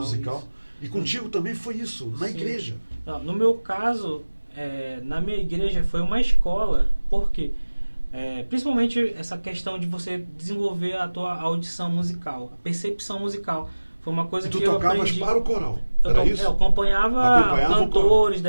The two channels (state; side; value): inverted; both; correlation -1.00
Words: E contigo também foi isso, na Sim. igreja. Não, no meu caso, na minha igreja foi uma escola, porque principalmente essa questão de você desenvolver a tua audição musical, a percepção musical. Foi uma coisa e tu que eu tocavas aprendi. para o coral, era isso? Eu acompanhava cantores